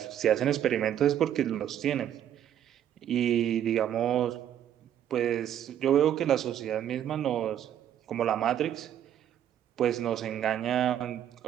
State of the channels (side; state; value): left; quieter; 10.4 dB